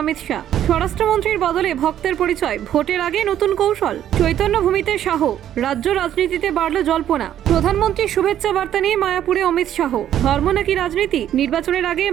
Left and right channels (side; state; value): left; quieter; 11.0 dB